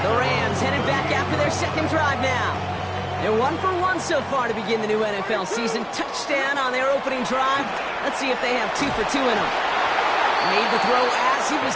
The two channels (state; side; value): identical; both; correlation 1.00